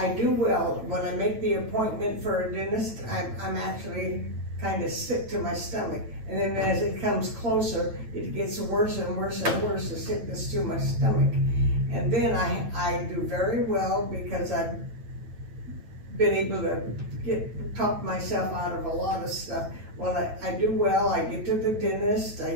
do well. When I make the appointment for a dentist, I'm actually kind of sick to my stomach. And then as it comes closer, it gets worse and worse and worse, the sickness to my stomach. And then I do very well because I've been able to talk myself out of a lot of stuff. When I do well, I get to the dentist, I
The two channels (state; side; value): late; left; 9.0 ms